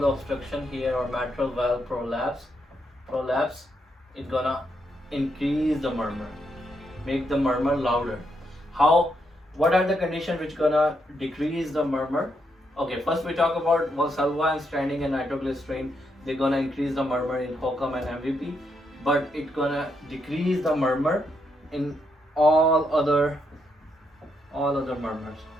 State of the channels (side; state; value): both; normal; correlation 0.79